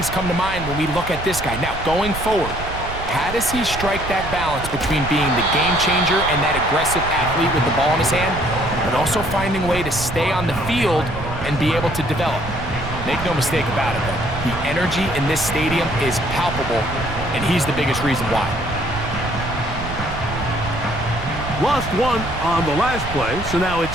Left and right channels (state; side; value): noise; right; rumble, 8 dB below the sound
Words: come to mind when we look at this guy. Now, going forward, how does he strike that balance between being the game changer and that aggressive athlete with the ball in his hand, but also finding a way to stay on the field and be able to develop? Make no mistake about it, though. The energy in this stadium is palpable, and he's the biggest reason why. Lost one on the last play, so now